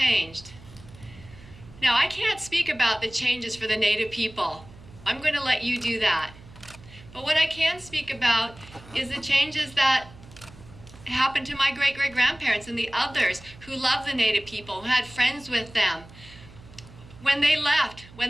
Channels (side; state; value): right; noise; hum, 20 dB below the sound